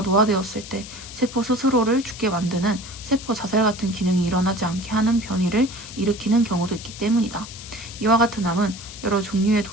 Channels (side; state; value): left; noise; hiss, 14 dB below the sound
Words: 노화되었을 때 세포 스스로를 죽게 만드는 세포 자살 같은 기능이 일어나지 않게 하는 변이를 일으키는 경우도 있기 때문이다. 이와 같은 암은 여러 종류의